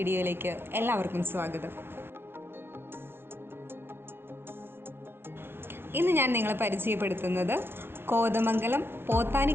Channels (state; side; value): late; left; 0.11 ms